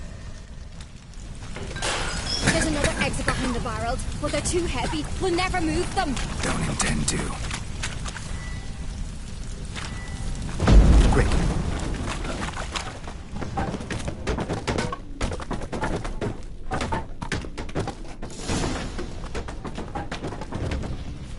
There's another exit behind the barrels, but they're too heavy. We'll never move them. Don't intend to. Quick.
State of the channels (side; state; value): both; identical; correlation 1.00